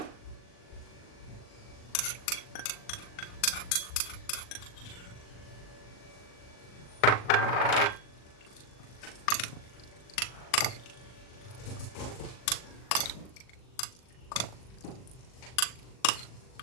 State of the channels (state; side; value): late; right; 39 ms